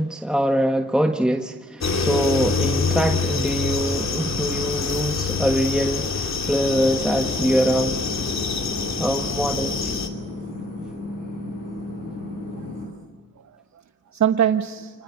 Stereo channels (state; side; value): normal; both; correlation 0.62